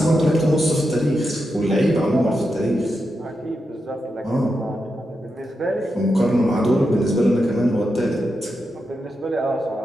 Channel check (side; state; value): both; normal; correlation 0.87